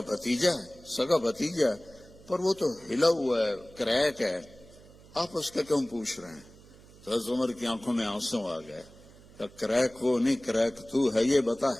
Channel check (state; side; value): noise; right; hum, 23 dB below the sound